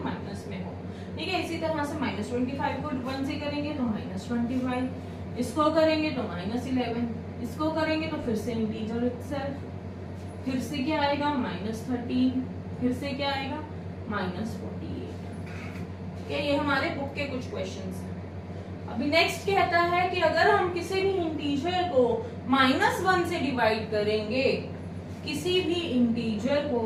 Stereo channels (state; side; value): identical; both; correlation 1.00